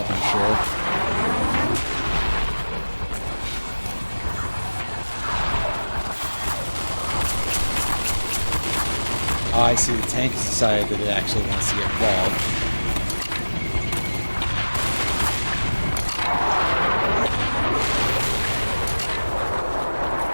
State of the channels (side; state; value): both; inverted; correlation -1.00